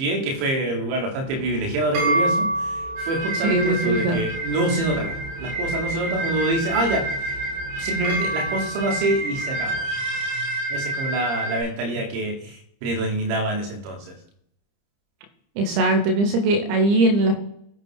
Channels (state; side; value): late; left; 30 ms